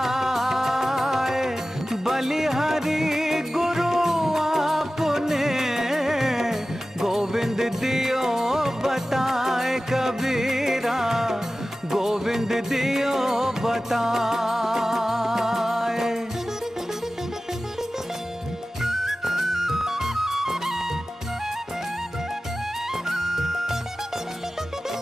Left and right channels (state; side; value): normal; both; correlation 0.95